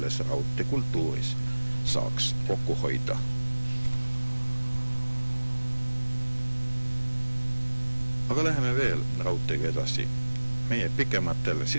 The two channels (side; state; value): both; inverted; correlation -1.00